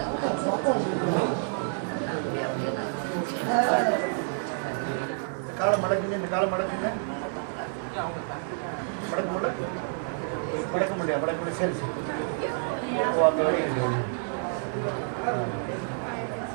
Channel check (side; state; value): left; silent; 59 dB below the other